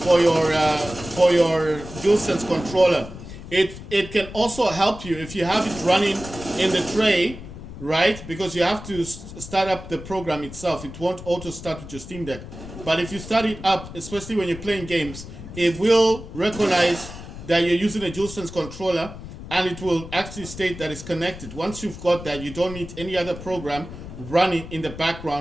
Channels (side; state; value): left; noise; rumble, 13 dB below the sound